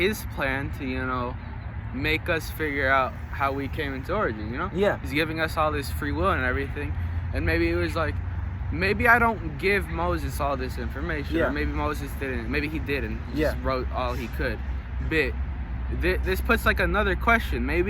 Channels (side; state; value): both; identical; correlation 1.00